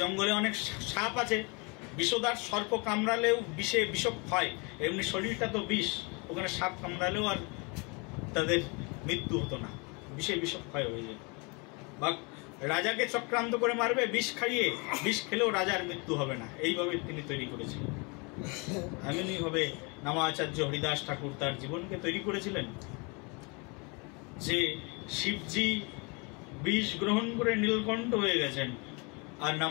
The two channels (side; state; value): right; quieter; 30.8 dB